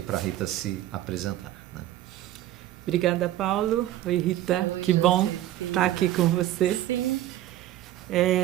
para a Rita se apresentar, né? Obrigada, Paulo. Oi, Rita. Que bom estar aqui com você.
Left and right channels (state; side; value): quieter; left; 13.8 dB